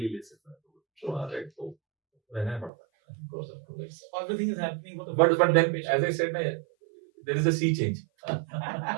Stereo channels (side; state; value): left; drops out; at 2.7 s